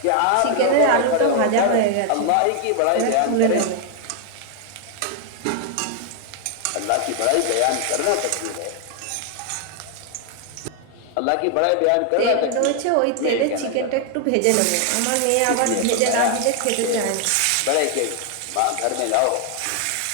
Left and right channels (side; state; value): both; different; correlation 0.00